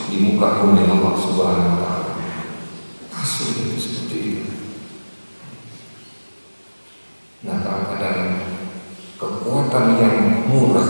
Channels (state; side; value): inverted; both; correlation -1.00